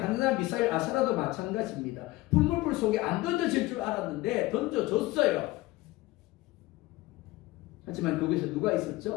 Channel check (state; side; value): quieter; right; 19.1 dB